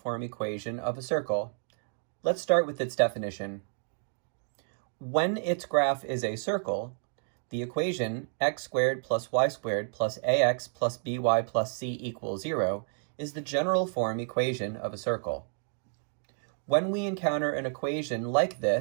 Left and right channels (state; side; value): silent; left; 58 dB below the other